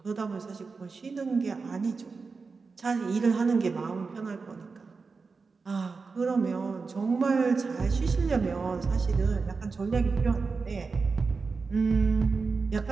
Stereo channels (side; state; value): left; quieter; 4.5 dB